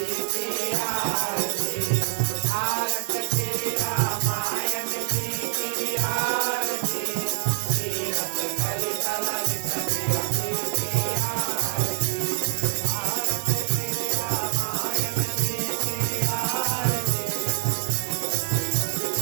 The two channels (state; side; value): silent; left; digital silence